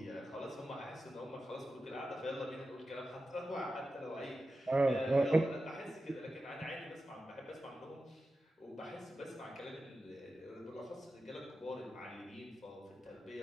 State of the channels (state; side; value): normal; both; correlation 0.92